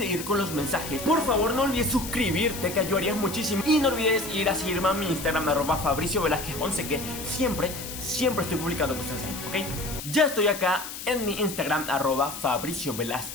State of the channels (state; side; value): noise; left; hiss, 9 dB below the sound